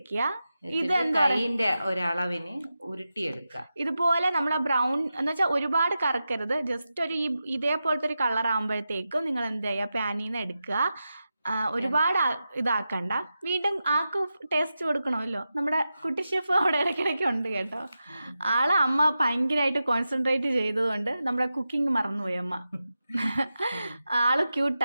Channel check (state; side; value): inverted; both; correlation -0.91